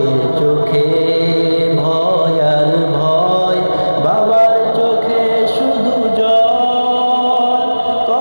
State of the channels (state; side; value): inverted; both; correlation -1.00